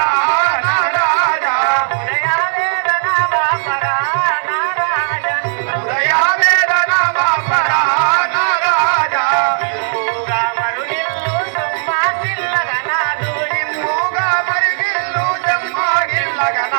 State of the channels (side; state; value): left; silent; digital silence